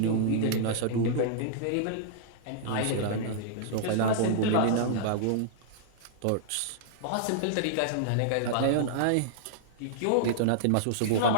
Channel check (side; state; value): both; different; correlation -0.02